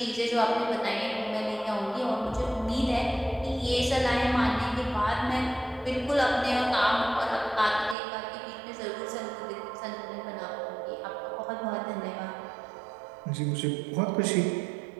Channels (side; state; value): left; drops out; at 8.0 s